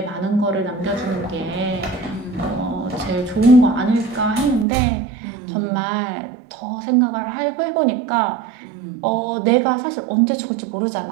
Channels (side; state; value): left; drops out; at 4.7 s